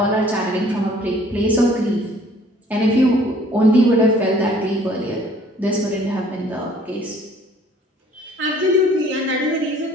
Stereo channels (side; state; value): both; normal; correlation 0.56